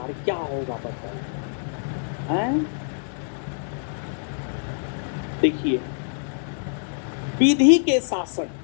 क्या होगा बताइए? देखिए, विधि के शासन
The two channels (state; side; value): silent; right; digital silence